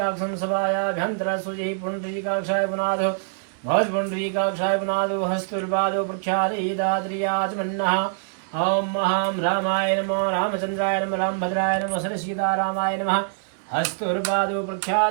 सभायाभ्यन्तरः शुचिः पुण्डरीकाक्षाय पुनादो भवत्पुण्डरीकाक्षाय पुनादो हस्तुर्पादो प्रख्यादिदाद्रियाचमन्नः। ॐ महां रामाय नमः रामचन्द्राय नमः रामभद्राय नमः सरसीतारामाय नमः हस्तुर्पादो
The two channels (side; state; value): left; silent; 62 dB below the other